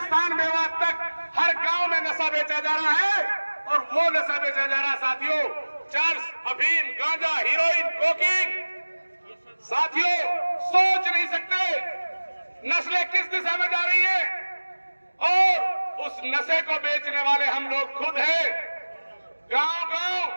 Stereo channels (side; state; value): both; inverted; correlation -1.00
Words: मेवात तक हर गांव में नशा बेचा जा रहा है, और वो नशा बेचा जा रहा है साथियों चर्स, अफीम, गांजा, हीरोइन, कोकीन। साथियों सोच नहीं सकते नस्लें किस दिशा में जा रही है, और उस नशे को बेचने वाले हम लोग खुद हैं। गांव-गांव